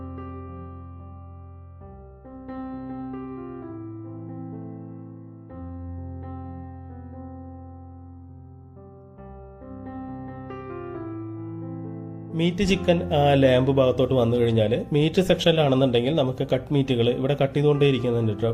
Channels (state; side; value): identical; both; correlation 1.00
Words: മീറ്റ് ചിക്കൻ ലാമ്പ് ഭാഗത്തോട്ട് വന്നു കഴിഞ്ഞാൽ മീറ്റ് സെക്ഷനിലാണെന്നുണ്ടെങ്കിൽ നമുക്ക് കട്ട് മീറ്റുകൾ ഇവിടെ കട്ട് ചെയ്തുകൊണ്ടേ ഇരിക്കുന്നുണ്ട് കേട്ടോ.